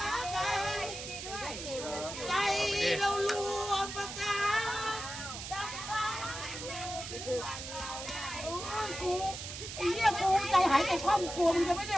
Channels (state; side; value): noise; right; hiss, 8 dB below the sound